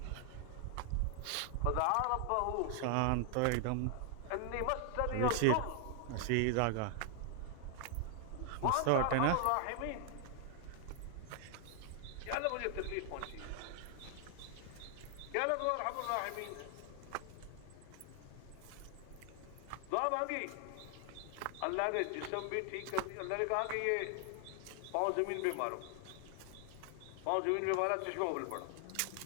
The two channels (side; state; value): both; different; correlation 0.00